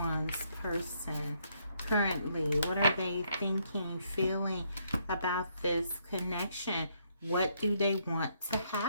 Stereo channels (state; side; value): inverted; both; correlation -0.72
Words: person currently? What are they thinking, feeling about this connection? What do they want to